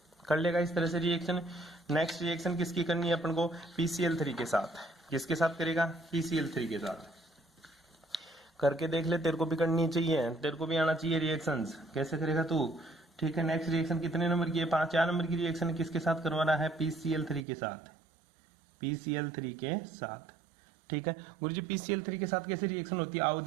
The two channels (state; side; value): drops out; left; at 17.4 s